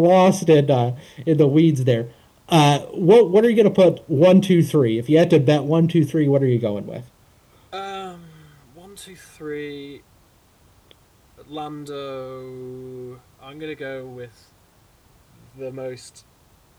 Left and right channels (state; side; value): identical; both; correlation 1.00